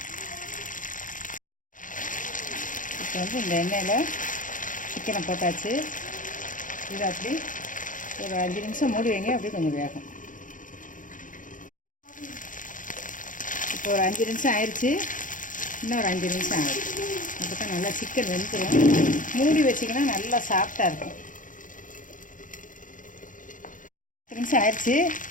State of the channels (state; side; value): late; right; 0.38 ms